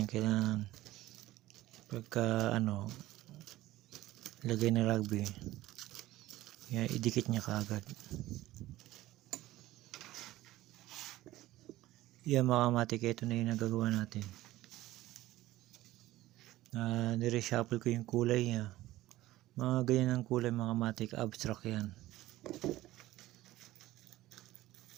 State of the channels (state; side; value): quieter; left; 16.3 dB